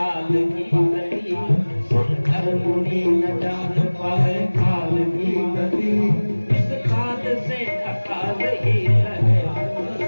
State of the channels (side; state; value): both; inverted; correlation -1.00